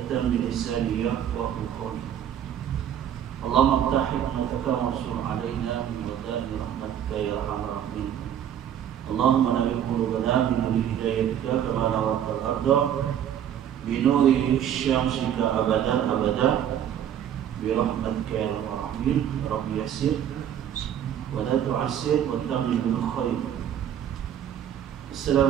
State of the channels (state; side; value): quieter; left; 9.9 dB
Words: من لساني يفقهوا قولي. اللهم افتح حكمتك وانصر علينا من ودائع رحمتك يا أرحم الراحمين. اللهم نور قلوبنا بنور هدايتك كما نورت الأرض بنور شمسك أبدا أبدا برحمتك يا أرحم الراحمين. رب يسر ولا تعسر وتمم بالخير.